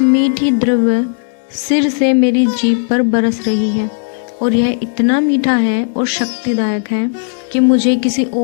मीठी द्रव्य सिर से मेरी जीभ पर बरस रही है, और यह इतना मीठा है और शक्तिदायक है कि मुझे किसी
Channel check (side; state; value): right; silent; digital silence